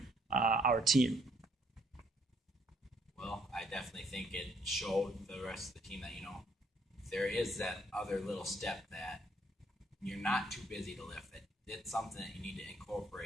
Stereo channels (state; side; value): normal; both; correlation 0.68